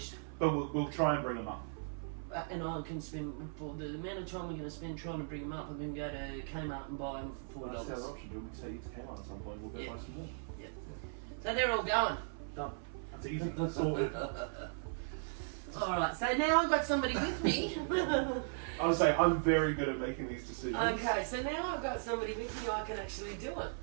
But we'll try and bring them up. And I can spend, for the amount of time we're going to spend trying to bring them up, I'm going to go to Kmart and buy them for $4. That's the other option. Do you want me to take you to Kmart at some point? We'll go buy some more. Yep. So they're all going. Done. That's easy. That's sorted. Alright, so now I've got somebody with me. I would say I'm very good at making these decisions. Okay, so now I've got somebody with me, I can actually do it.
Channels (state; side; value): silent; left; 53 dB below the other